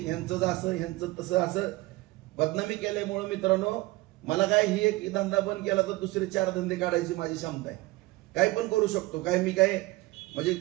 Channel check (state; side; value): quieter; left; 20.3 dB